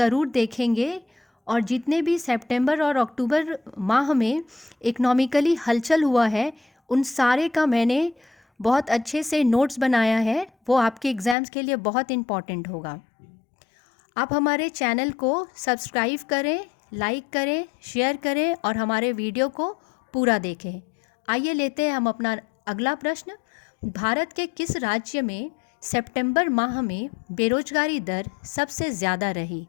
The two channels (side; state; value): right; drops out; at 11.4 s